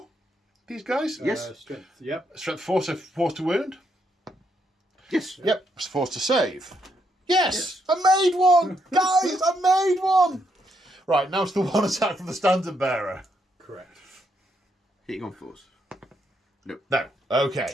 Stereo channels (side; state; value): both; normal; correlation 0.77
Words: these guys? Yes. Strength. Yep. Strength 4, so 4 to wound? Yes. Yep, it's 4 to save. Yes! I made one! Guys, I made one! Right, now it's the 1 attack from the standard bearer. Correct. Hitting on 4s. No.